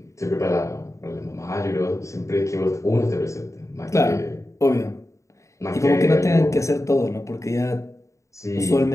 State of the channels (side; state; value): right; late; 0.15 ms